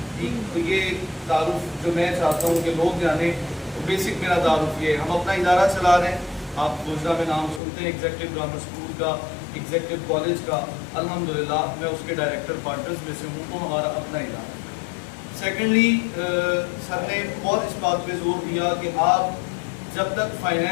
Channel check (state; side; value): drops out; right; at 7.6 s